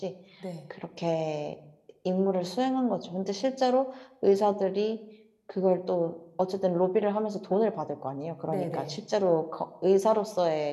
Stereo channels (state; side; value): identical; both; correlation 1.00